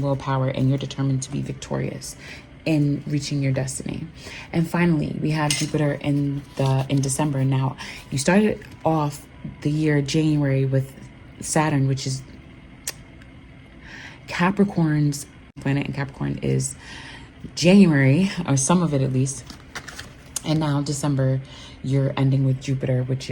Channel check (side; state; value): both; identical; correlation 1.00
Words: willpower and you're determined to be victorious in reaching your destiny. And finally, we have Jupiter in December. Now, you started off the year January with Saturn, which is Capricorn's planet, and Capricorn is January, or some of it at least. And now December, you're ending with Jupiter, which